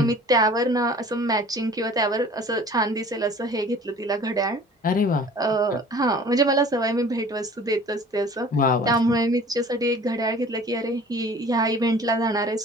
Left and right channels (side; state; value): both; normal; correlation 0.47